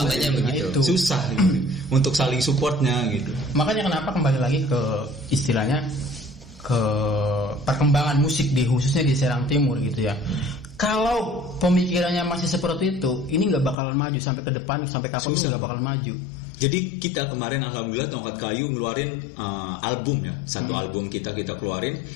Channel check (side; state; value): right; drops out; at 13.8 s